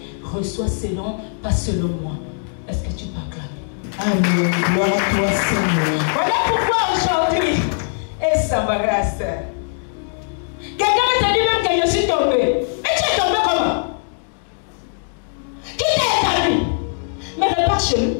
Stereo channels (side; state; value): right; silent; digital silence